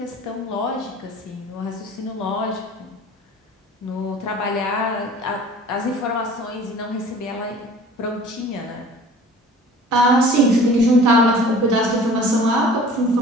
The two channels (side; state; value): both; normal; correlation 0.46